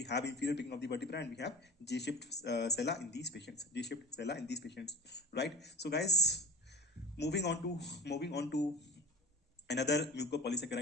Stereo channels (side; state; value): both; normal; correlation 0.34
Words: have inferior beaking of the vertebra, and we have J-shaped sella in these patients. Right? So guys, moving on to another